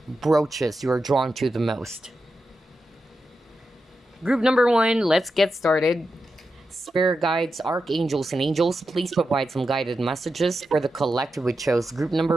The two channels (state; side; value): normal; both; correlation 0.89